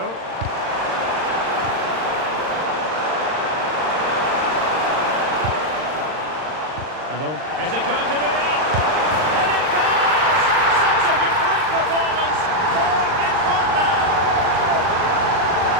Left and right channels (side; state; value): left; late; 39 ms